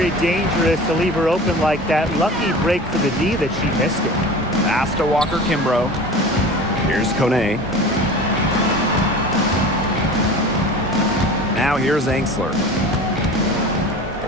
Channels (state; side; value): normal; both; correlation 0.37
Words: dangerous to leave her open like that. Lucky break for the D that she missed it. Pass to Walker Kimbrough. Here's Kone. Now here's Angsler.